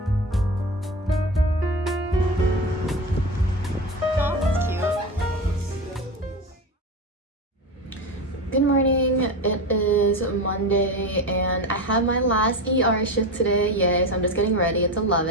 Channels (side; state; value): both; normal; correlation 0.23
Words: Good morning, it is Monday and I have my last ER shift today. Yay, so I'm just getting ready. It's